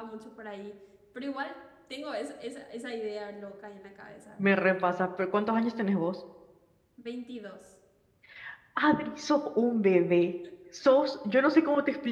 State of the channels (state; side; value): identical; both; correlation 1.00